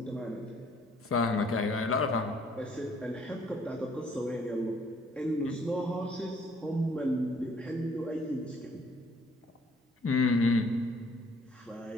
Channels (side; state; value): both; normal; correlation 0.62